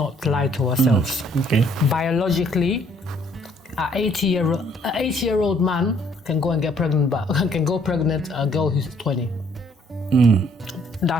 lie to ourselves. Okay. Biologically, an 80-year-old man can go and get pregnant, but can go pregnant a girl who's 20.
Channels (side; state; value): both; normal; correlation 0.64